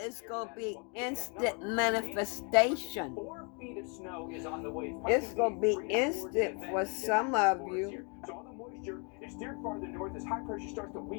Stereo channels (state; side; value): quieter; right; 35.2 dB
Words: gonna be instant manifestation. 4 feet of snow is on the way. It's gonna be instant for some of you. So all the moisture is steered farther north as high pressure starts to